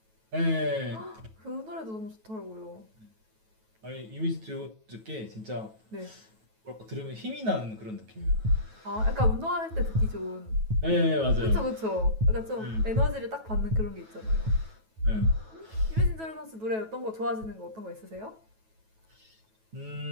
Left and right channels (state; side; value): late; left; 9.2 ms